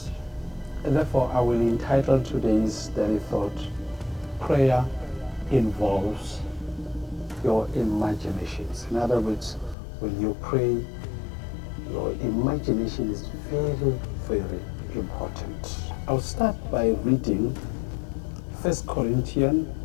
And therefore, I will entitle today's daily thought, Prayer Involves Your Imaginations. In other words, when you pray, your imagination is very, very important. I'll start by reading 1 Corinthians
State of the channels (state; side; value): drops out; right; at 9.8 s